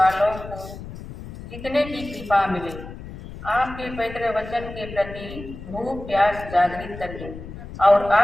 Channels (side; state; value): left; noise; rumble, 12 dB below the sound